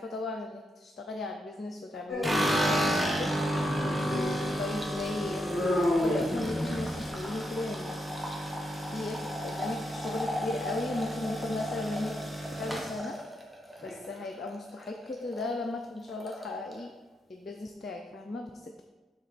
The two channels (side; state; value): both; normal; correlation 0.82